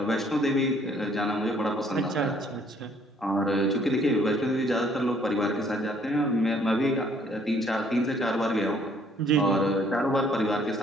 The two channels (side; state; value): both; normal; correlation 0.62